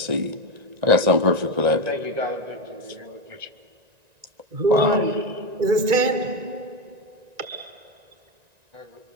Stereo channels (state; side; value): late; left; 1.9 ms